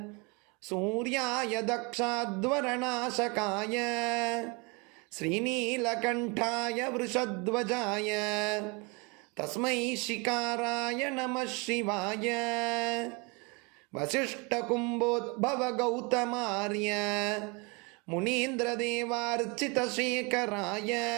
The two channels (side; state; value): left; quieter; 29.6 dB